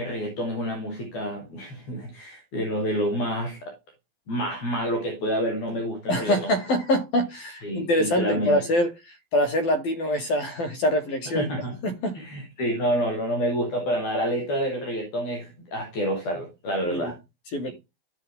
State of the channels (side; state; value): right; late; 12 ms